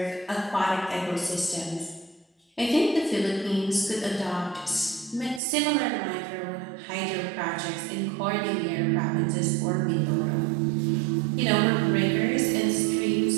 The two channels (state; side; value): drops out; left; at 5.4 s